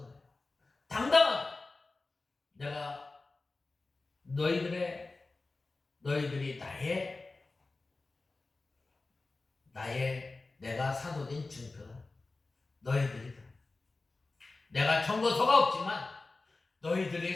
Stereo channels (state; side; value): quieter; right; 3.5 dB